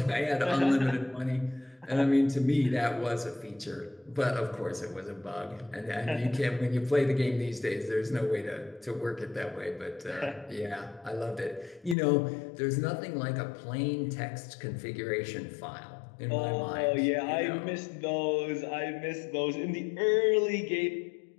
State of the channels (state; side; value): drops out; right; at 12.0 s